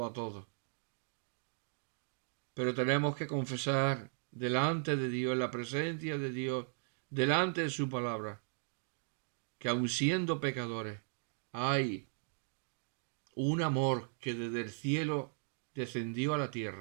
a todos. Pero tenemos que confesar delante de Dios, en la presencia de Dios, delante de su palabra, que aun siendo pecadores, hay un amor que desde el cielo descendió a la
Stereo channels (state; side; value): silent; left; digital silence